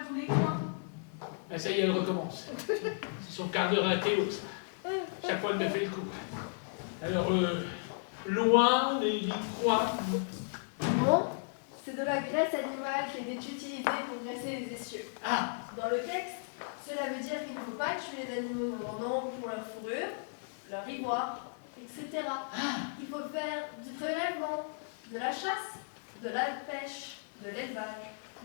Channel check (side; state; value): right; silent; 55 dB below the other